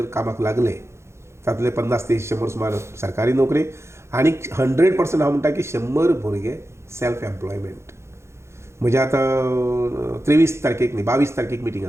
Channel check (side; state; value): left; late; 0.13 ms